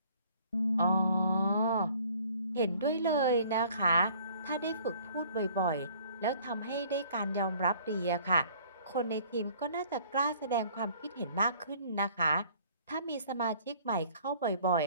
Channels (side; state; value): both; inverted; correlation -0.55